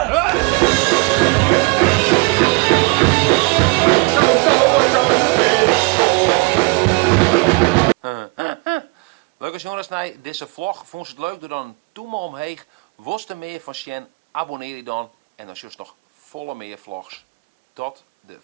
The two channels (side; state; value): left; quieter; 29.0 dB